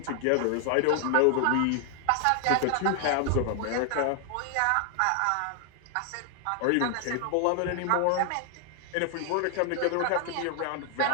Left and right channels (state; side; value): different; both; correlation 0.00